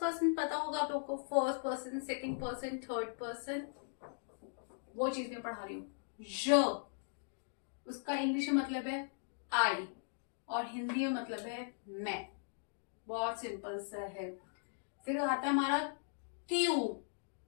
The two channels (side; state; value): right; silent; digital silence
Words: पर्सन। पता होगा आप लोग को, first person, second person, third person, वो चीज मैं पढ़ा रही हूँ। ज उसका इंग्लिश में मतलब है आई और हिंदी में मतलब है मैं। बहुत सिंपल सा है। फिर आता है हमारा त्यू।